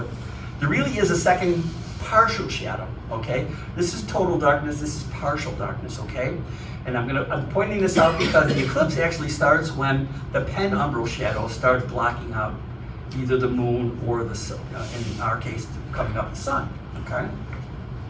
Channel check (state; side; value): identical; both; correlation 1.00